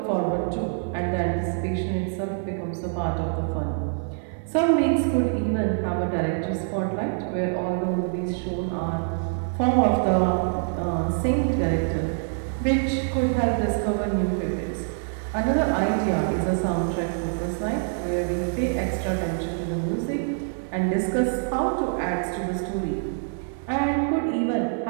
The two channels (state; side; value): silent; left; 61 dB below the other